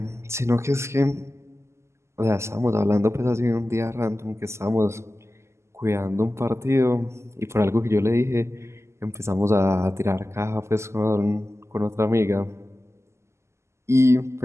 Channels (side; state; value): left; late; 0.13 ms